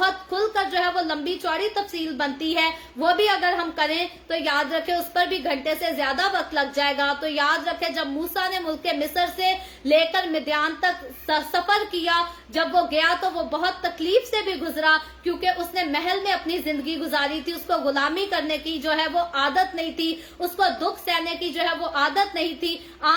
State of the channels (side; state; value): both; identical; correlation 1.00